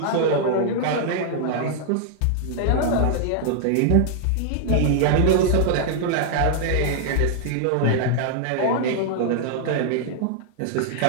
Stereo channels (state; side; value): different; both; correlation -0.01